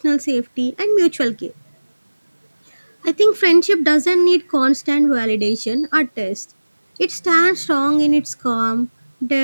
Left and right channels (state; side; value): inverted; both; correlation -1.00